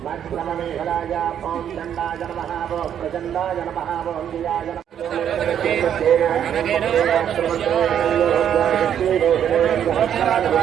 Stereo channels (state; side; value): quieter; left; 9.4 dB